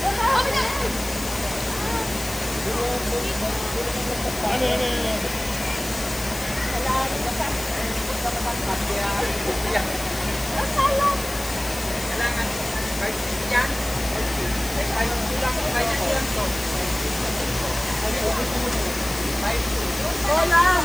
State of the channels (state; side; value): noise; left; hiss, 11 dB below the sound